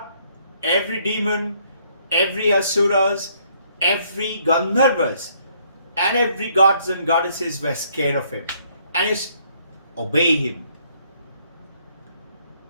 every demon, every asuras, every Gandharvas, and every gods and goddesses were scared of him and used to obey him.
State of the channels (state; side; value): inverted; both; correlation -0.66